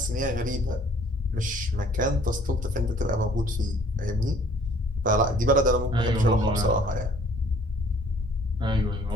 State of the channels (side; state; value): both; normal; correlation 0.56